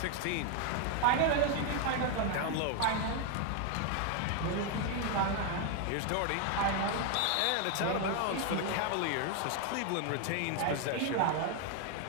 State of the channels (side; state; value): both; different; correlation 0.01